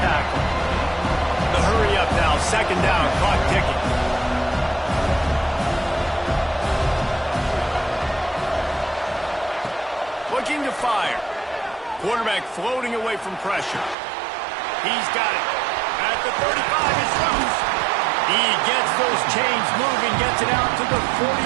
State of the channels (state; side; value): drops out; left; at 14.0 s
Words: The hurry up now, second down, clock ticking. Looking to fire. Quarterback floating away from pressure. He's got it. At the 35, it's loose. He gets those chains moving, gets it out to the